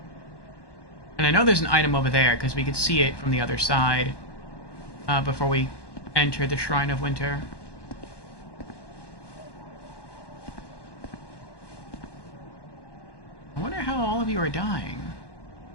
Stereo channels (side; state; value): right; late; 1.1 ms